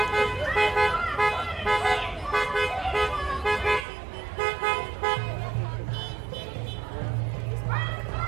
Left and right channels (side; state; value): left; drops out; at 3.9 s